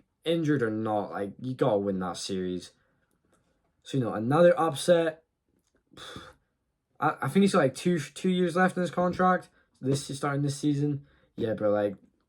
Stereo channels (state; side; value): identical; both; correlation 1.00